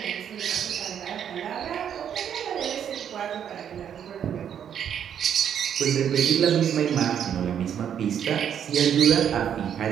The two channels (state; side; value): quieter; left; 8.9 dB